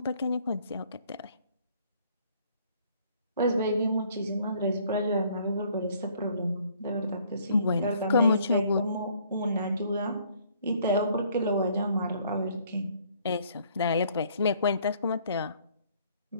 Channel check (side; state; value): both; inverted; correlation -0.61